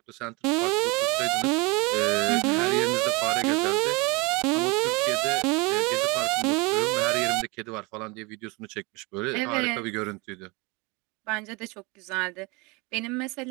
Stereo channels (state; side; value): quieter; left; 26.9 dB